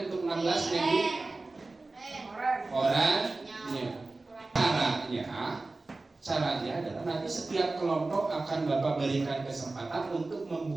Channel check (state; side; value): quieter; left; 3.3 dB